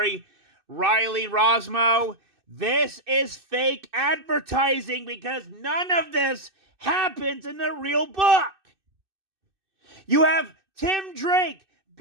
Riley Rosmo. This is fake advertising because none of this happens in the real book. You have Tim Drake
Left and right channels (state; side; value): late; left; 2.6 ms